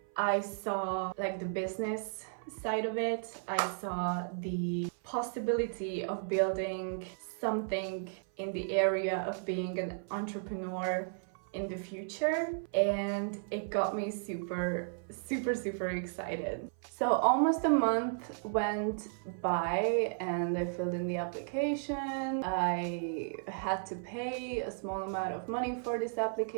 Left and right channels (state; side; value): silent; left; 55 dB below the other